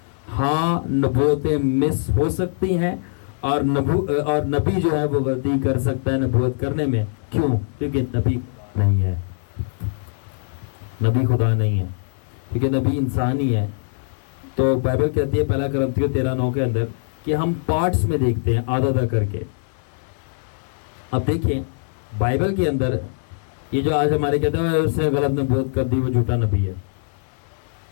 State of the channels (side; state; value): right; silent; 57 dB below the other